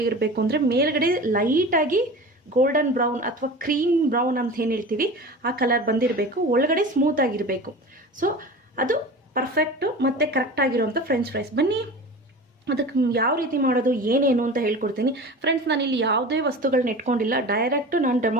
ಅಂದರೆ, ಮೇಲ್ಗಡೆ ಲೈಟಾಗಿ ಗೋಲ್ಡನ್ ಬ್ರೌನ್ ಅಥವಾ ಕ್ರೀಮ್ ಬ್ರೌನ್ ಅಂತ ಏನು ಹೇಳ್ತೀವಿ ಆ ಕಲರ್ ಬಂದಿರಬೇಕು, ಒಳಗಡೆ ಸ್ಮೂತ್ ಆಗಿರಬೇಕು. ಸೊ ಅದು ಪರ್ಫೆಕ್ಟು ಮತ್ತು ಕರೆಕ್ಟಾಗಿರುವಂಥ ಫ್ರೆಂಚ್ ಫ್ರೈಸ್. ಬನ್ನಿ ಅದಕ್ಕೆ ಯಾವ ರೀತಿ ಮಾಡೋದು ಏನೇನು ಅಂತ ಹೇಳ್ಕೊಡ್ತೀನಿ. ಫ್ರೆಂಡ್ಸ್, ನಾನು ಇಲ್ಲಿ ಯಾವುದೇ ವಸ್ತುಗಳನ್ನ ಇಟ್ಕೊಂಡಿಲ್ಲ, ಡೈರೆಕ್ಟು ನಾನು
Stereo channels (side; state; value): both; normal; correlation 0.34